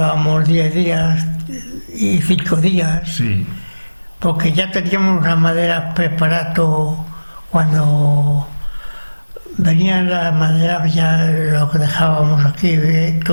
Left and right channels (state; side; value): inverted; both; correlation -1.00